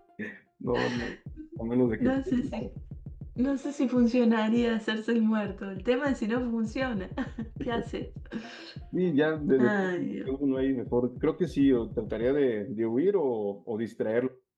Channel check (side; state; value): both; identical; correlation 1.00